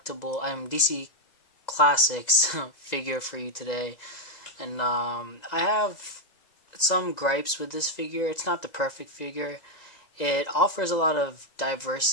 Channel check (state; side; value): late; right; 2.0 ms